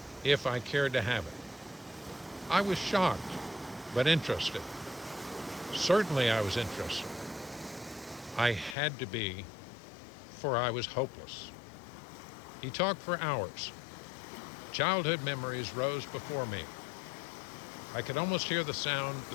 if I cared to have it. I was shocked, but interested. Certainly I was interested. I had to be, for I was hopeless. He talked for hours. Childhood memories rose before me. I could almost hear the sound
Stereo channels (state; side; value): drops out; right; at 8.8 s